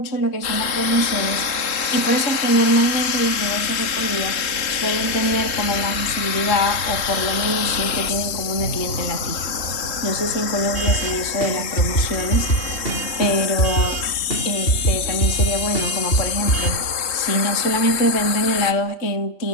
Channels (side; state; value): right; late; 3.7 ms